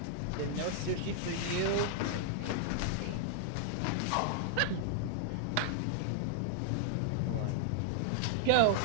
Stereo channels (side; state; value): both; different; correlation -0.01